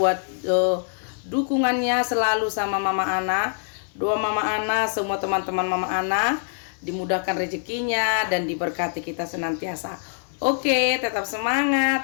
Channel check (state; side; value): silent; right; digital silence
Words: dukungannya selalu sama Mama Ana. Doa Mama Ana, semua teman-teman Mama Ana dimudahkan rezekinya dan diberkati kita senantiasa. Oke, tetap